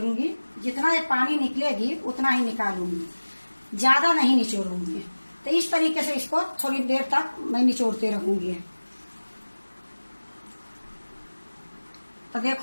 जितना ये पानी निकलेगी उतना ही निकालूंगी, ज्यादा नहीं निचोड़ूंगी। तो इस तरीके से इसको थोड़ी देर तक मैं निचोड़ते रहूंगी। तो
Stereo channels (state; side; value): inverted; both; correlation -1.00